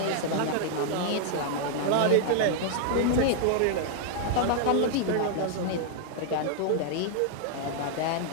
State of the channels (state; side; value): different; both; correlation 0.00